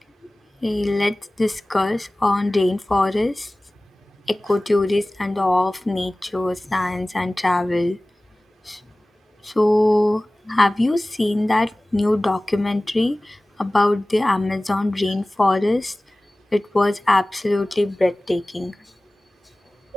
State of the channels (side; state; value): both; normal; correlation 0.98